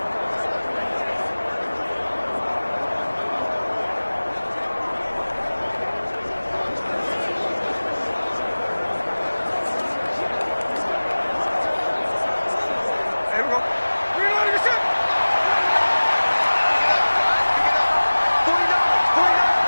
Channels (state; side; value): inverted; both; correlation -1.00